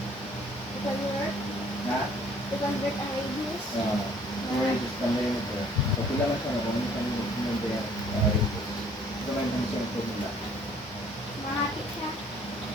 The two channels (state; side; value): normal; both; correlation 0.58